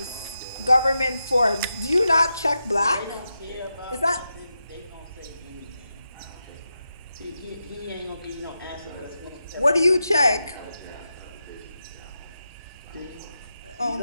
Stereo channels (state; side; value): inverted; both; correlation -0.89